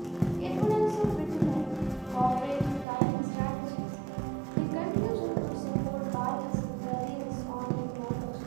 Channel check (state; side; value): drops out; left; at 2.9 s